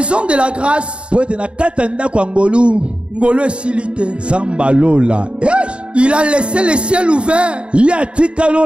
de la grâce, Ngolo est silité. Il a laissé le ciel ouvert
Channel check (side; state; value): left; late; 0.056 ms